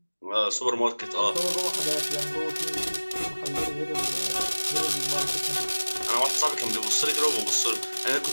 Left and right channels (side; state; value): both; inverted; correlation -1.00